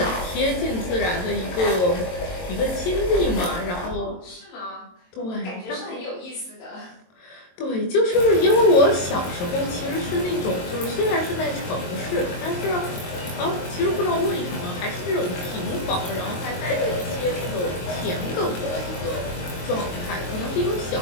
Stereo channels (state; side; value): late; right; 22 ms